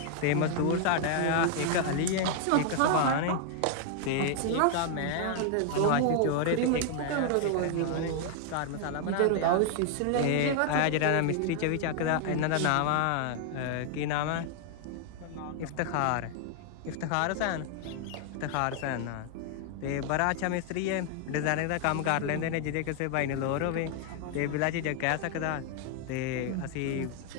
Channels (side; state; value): both; different; correlation 0.00